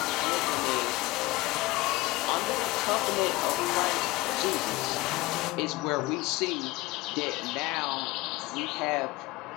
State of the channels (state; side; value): quieter; right; 20.8 dB